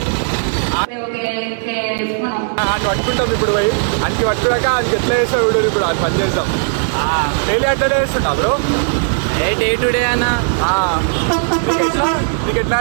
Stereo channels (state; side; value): silent; left; 66 dB below the other